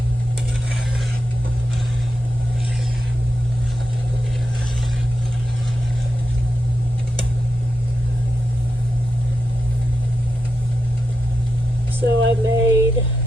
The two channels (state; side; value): normal; both; correlation 0.87